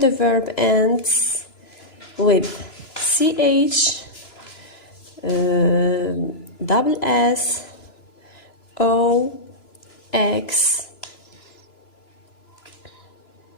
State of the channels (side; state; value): right; late; 3.0 ms